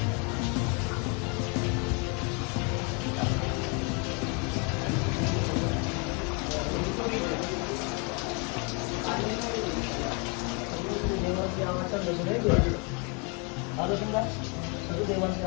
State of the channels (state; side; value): quieter; right; 33.9 dB